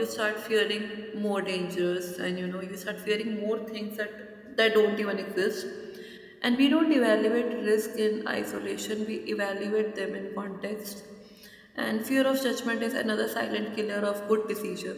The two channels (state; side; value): identical; both; correlation 1.00